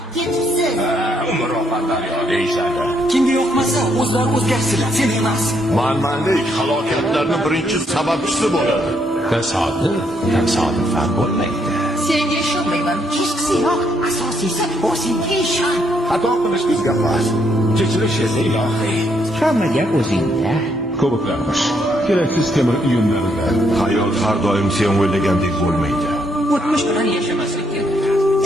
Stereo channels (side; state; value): both; normal; correlation 0.73